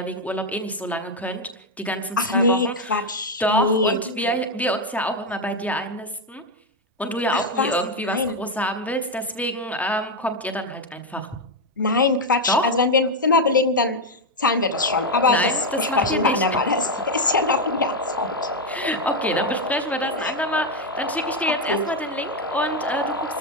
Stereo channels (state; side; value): normal; both; correlation 0.05